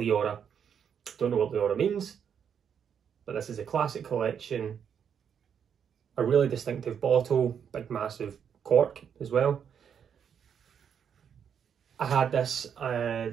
Don't know what Liora means, but this is a classic collection a really distinctive bottle, big massive cork as well. I had this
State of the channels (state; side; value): quieter; left; 7.8 dB